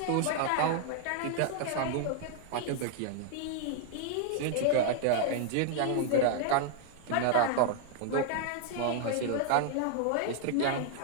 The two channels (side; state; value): both; different; correlation 0.00